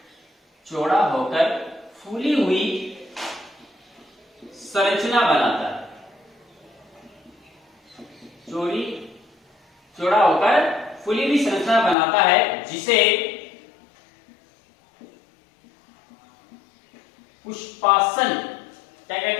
संरचना बनाता है। चौड़ा होकर फूली हुई संरचना बनाता है, जिसे पुष्पासन, क्या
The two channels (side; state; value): right; drops out; at 12.0 s